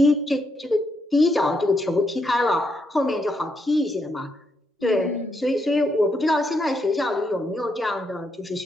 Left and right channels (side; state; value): both; normal; correlation 0.78